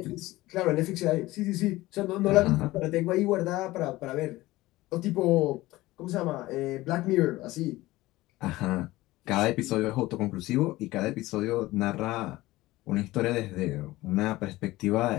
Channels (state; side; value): quieter; right; 18.3 dB